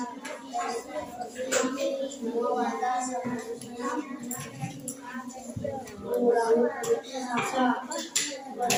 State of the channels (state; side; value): identical; both; correlation 1.00